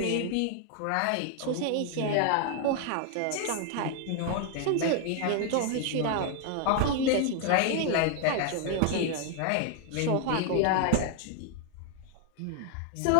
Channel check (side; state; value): both; different; correlation 0.00